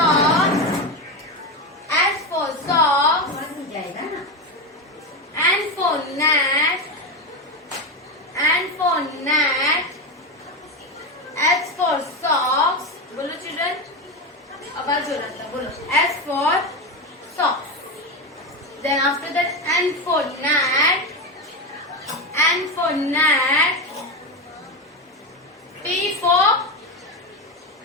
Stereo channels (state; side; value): normal; both; correlation 0.16